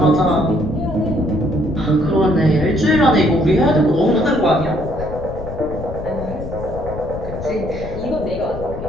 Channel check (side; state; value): left; noise; rumble, 9 dB below the sound